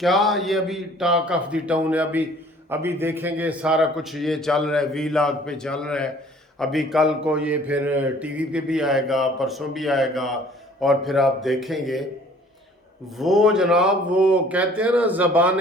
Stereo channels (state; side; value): normal; both; correlation 0.54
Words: ये अभी टॉक ऑफ द टाउन है? अभी अभी देखेंगे सारा कुछ ये चल रहा है, वीलॉग पे चल रहा है। अभी कल को ये फिर टीवी पे भी आएगा, परसों भी आएगा, और फिर आप देखेंगे। वो जनाब, वो कहते हैं ना,